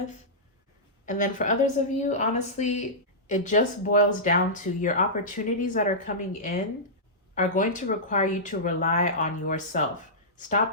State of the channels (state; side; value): normal; both; correlation -0.14